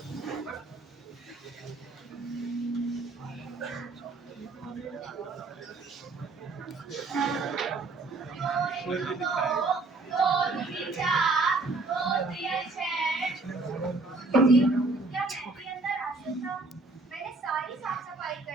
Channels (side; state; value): left; quieter; 3.5 dB